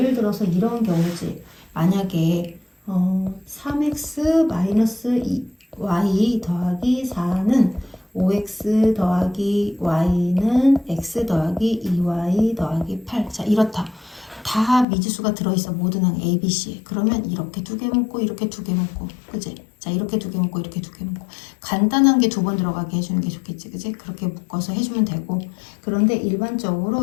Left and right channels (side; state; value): right; drops out; at 14.9 s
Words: 들어서 이런 경우지. 만약에 3x 마이너스 y 더하기 4는 5x 더하기 y는 x 더하기 2y 더하기 8. 자, 이렇다. 다 미지수가 들어있어. 모든 항 A, B, C. 그러면 이렇게 두 개 묶고 이렇게 두 개 묶고, 그치? 자, 이렇게 두 개 묶고 이렇게 두 개 묶고. 간단한 게 두 번 들어가게 해주는 게 좋겠지, 그치? 그렇게 묶어서 해주면 되고. 그런데